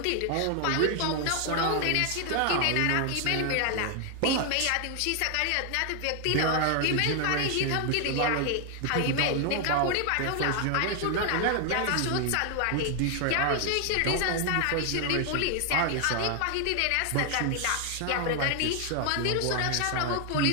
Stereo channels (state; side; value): different; both; correlation 0.00